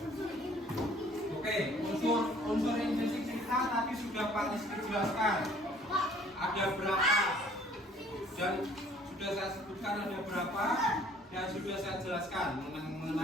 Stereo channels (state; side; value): normal; both; correlation 0.57